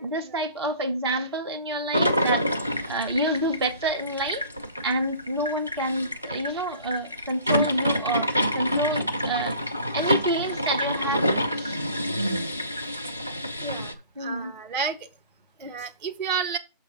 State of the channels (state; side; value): inverted; both; correlation -0.47